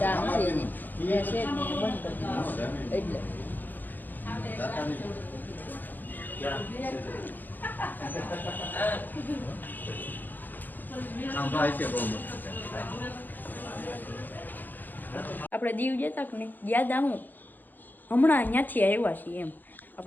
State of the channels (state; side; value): late; right; 0.087 ms